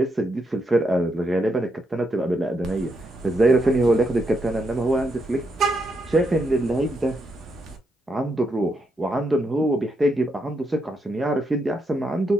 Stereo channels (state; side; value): normal; both; correlation 0.80